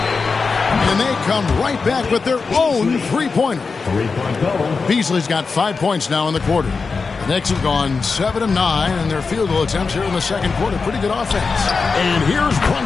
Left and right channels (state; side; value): quieter; right; 4.6 dB